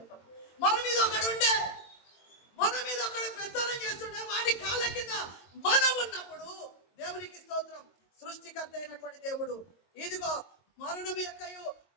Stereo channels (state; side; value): late; right; 22 ms